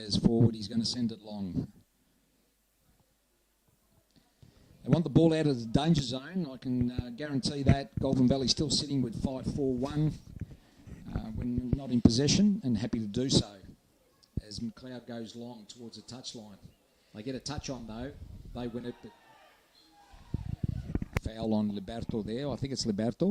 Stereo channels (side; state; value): both; identical; correlation 1.00